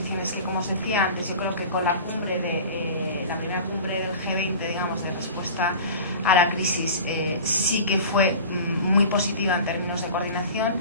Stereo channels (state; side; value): inverted; both; correlation -0.37